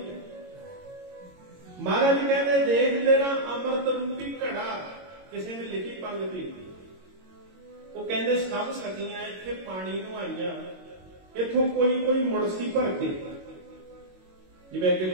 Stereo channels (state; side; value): late; left; 22 ms